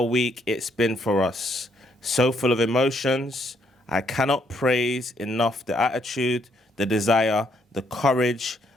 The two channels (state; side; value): normal; both; correlation 0.72